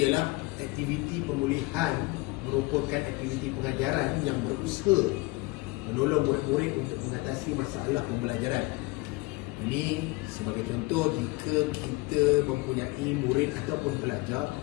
ialah aktiviti pemulihan merupakan aktiviti pengajaran yang berusaha menolong murid-murid untuk mengatasi masalah pembelajaran. Ini sebagai contoh, jika kita mempunyai murid ataupun pelajar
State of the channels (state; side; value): quieter; right; 22.9 dB